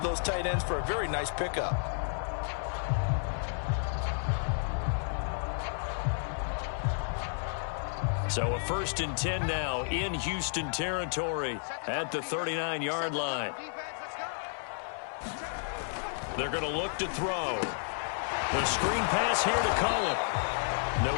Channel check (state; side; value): silent; right; 57 dB below the other